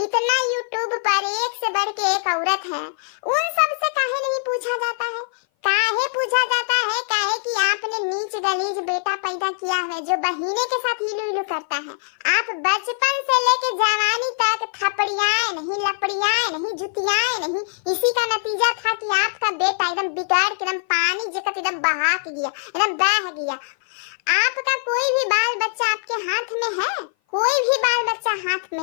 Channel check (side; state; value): right; silent; 58 dB below the other